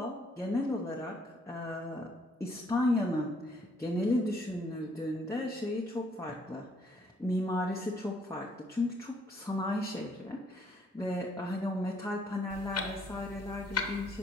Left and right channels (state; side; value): normal; both; correlation 0.67